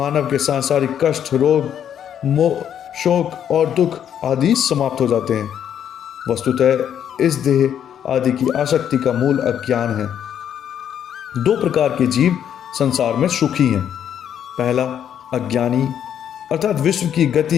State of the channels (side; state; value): right; quieter; 9.3 dB